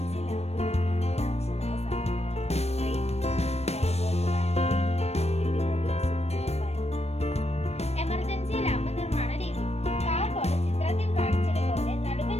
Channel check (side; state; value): right; late; 0.31 ms